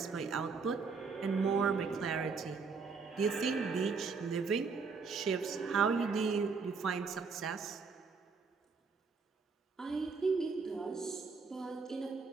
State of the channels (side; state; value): left; quieter; 4.9 dB